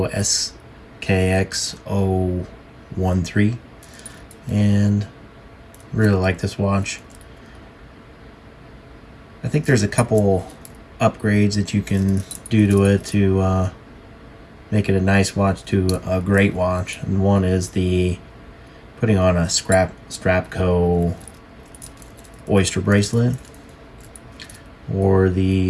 SKX 013, and really like this watch. I think there's a couple upgrades that you can do to it to make it a nice watch to a great watch, and one is the putting on a Strapco oyster bracelet, or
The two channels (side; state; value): both; identical; correlation 1.00